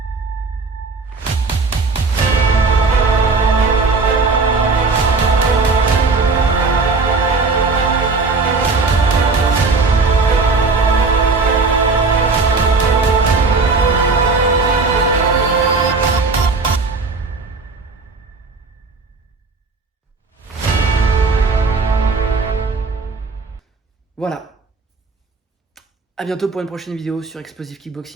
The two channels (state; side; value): quieter; left; 4.1 dB